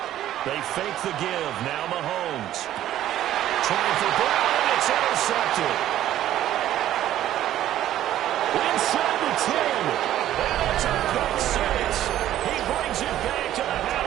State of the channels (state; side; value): quieter; left; 12.6 dB